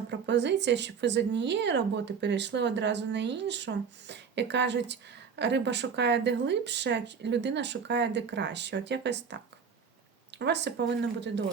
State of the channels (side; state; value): left; quieter; 6.3 dB